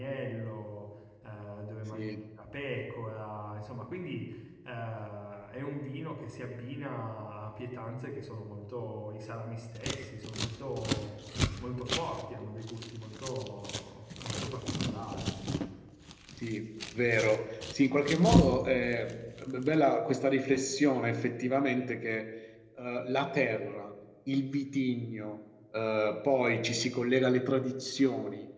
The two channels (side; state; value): both; identical; correlation 1.00